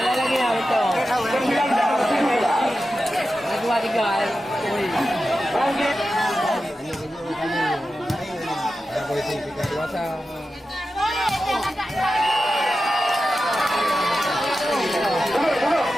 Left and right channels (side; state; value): both; normal; correlation 0.92